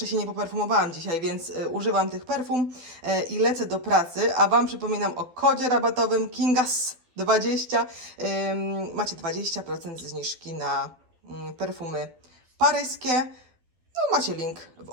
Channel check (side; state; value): left; late; 12 ms